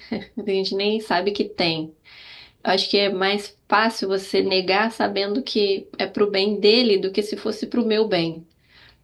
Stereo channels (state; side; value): identical; both; correlation 1.00